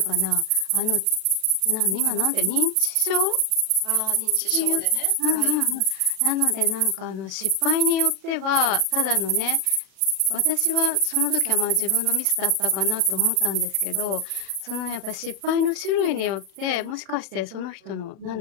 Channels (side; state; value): left; late; 37 ms